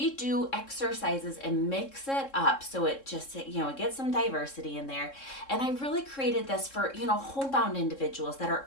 do exercises and mix it up so it just, it gets some diversity in there. And I really created this for, homebound individuals that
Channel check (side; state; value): right; late; 3.7 ms